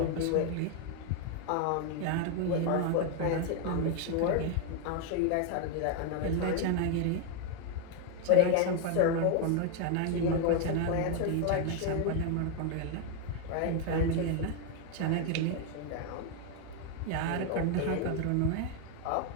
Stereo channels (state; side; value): different; both; correlation 0.01